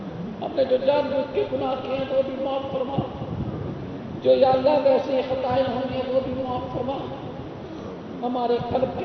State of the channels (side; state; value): both; identical; correlation 1.00